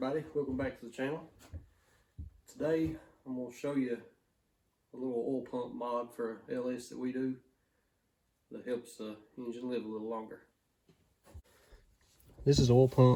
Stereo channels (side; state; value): both; identical; correlation 1.00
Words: welcome back to the channel. Today I'm going to show you a little oil pump mod for LS that we do that helps the engine live a little longer. This is an oil